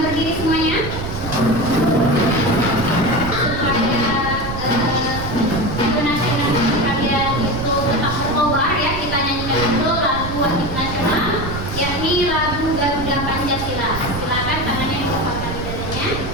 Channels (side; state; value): right; noise; rumble, 7 dB below the sound